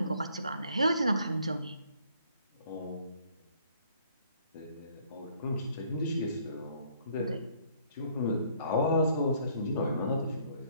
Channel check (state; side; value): inverted; both; correlation -0.63